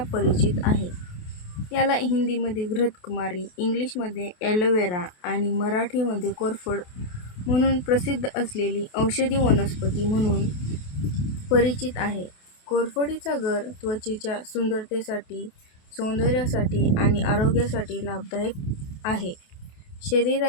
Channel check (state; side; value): late; right; 28 ms